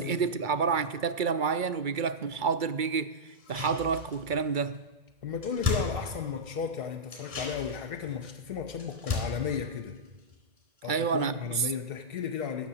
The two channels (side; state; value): left; late; 2.3 ms